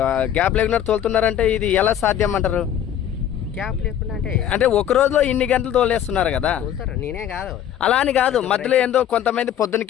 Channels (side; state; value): right; quieter; 10.2 dB